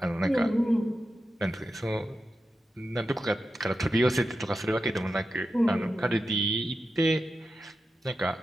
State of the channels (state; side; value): normal; both; correlation 0.90